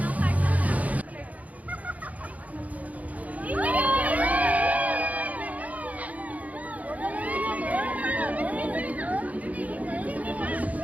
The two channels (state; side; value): late; left; 0.072 ms